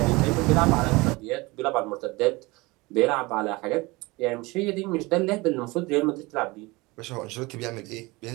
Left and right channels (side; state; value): left; quieter; 23.4 dB